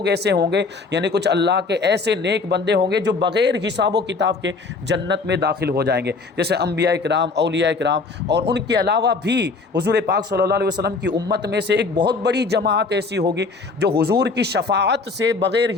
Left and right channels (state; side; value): quieter; right; 4.1 dB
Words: ایسے ہوں گے، یعنی کچھ اللہ کے ایسے نیک بندے ہوں گے جو بغیر حساب و کتاب کے جنت میں داخل ہو جائیں گے، جیسے انبیاء کرام، اولیاء کرام، اور ان کے علاوہ بھی حضور پاک صلی اللہ علیہ وسلم کی امت میں سے ایک بہت بڑی جماعت ایسی ہوگی جو حضور کی شفاعت سے